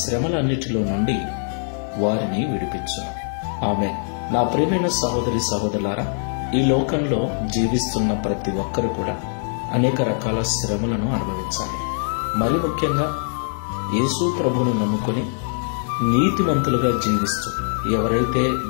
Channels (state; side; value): silent; right; 64 dB below the other